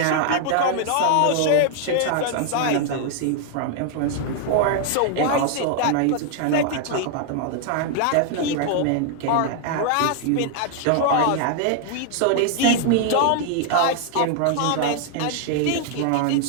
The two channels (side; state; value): both; different; correlation 0.00